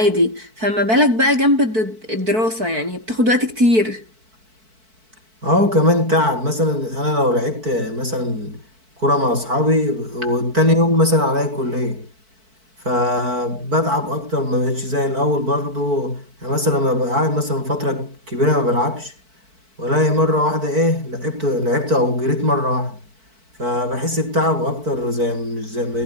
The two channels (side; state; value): left; late; 4.5 ms